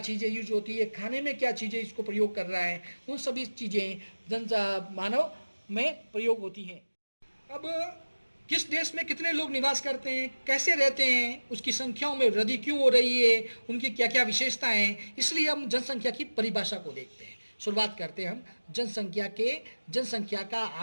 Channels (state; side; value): inverted; both; correlation -1.00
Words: चीज़ें यूज होती है, खाने में क्या चीज़ें इसको प्रयोग कर रहा है, उन सभी चीज़ें मानव में प्रयोग होती हैं। अब किस देश में कितने लोग निवास करते हैं, कैसे रहते हैं, उसकी संख्याओं में वृद्धि क्यों हो रही है, उनकी क्या क्या विशेषताएं हैं, इसलिए हम जनसंख्या की परिभाषा को देखते हैं। शुरुआत करते हैं हम जनसंख्या का